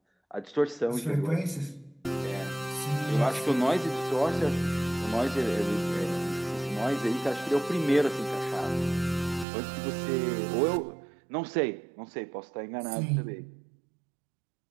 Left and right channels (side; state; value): left; drops out; at 9.5 s